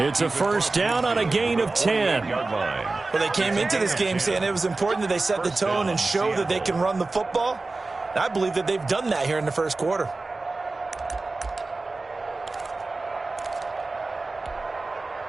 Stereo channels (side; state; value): left; quieter; 3.4 dB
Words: a first down on a gain of 10. Well, they came into this game saying it was important that they set the tone and show that they can run the football. And I believe that they've done that here in the first quarter.